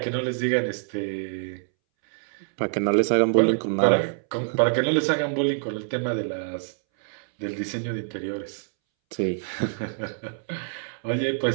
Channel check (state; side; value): silent; left; 61 dB below the other